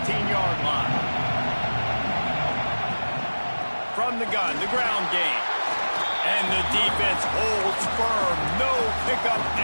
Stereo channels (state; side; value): inverted; both; correlation -1.00